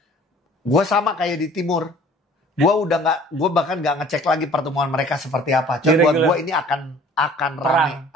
Gue sama kayak di Timur. Gue bahkan nggak ngecek lagi pertemuan mereka seperti apa. Cuma buat gue ini akan ramai,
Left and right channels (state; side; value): normal; both; correlation 0.50